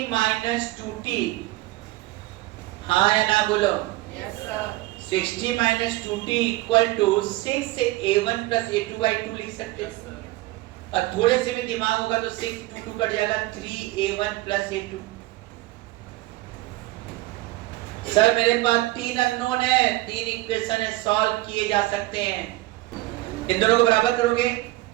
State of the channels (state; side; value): quieter; left; 18.9 dB